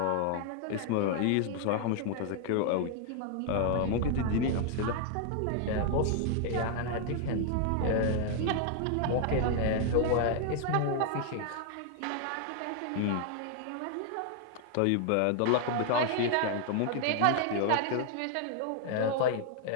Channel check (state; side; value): different; both; correlation 0.00